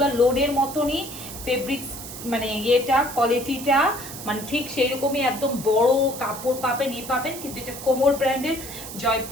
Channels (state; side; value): noise; right; hiss, 11 dB below the sound